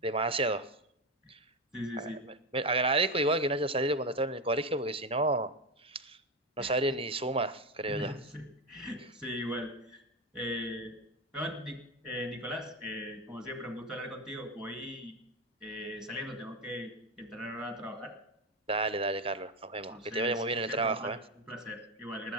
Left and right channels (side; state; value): both; normal; correlation 0.14